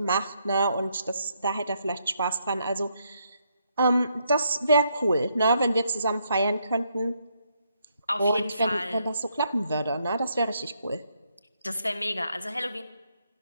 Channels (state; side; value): inverted; both; correlation -0.76